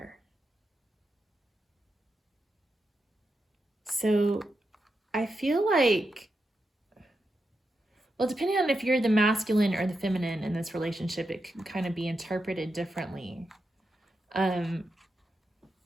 So I feel like, well, depending on if you're the masculine or the feminine in this relationship, it can kind of be interpreted differently. But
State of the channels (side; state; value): both; normal; correlation 0.87